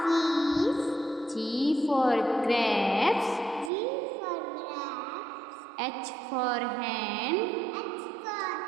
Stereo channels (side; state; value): left; drops out; at 3.7 s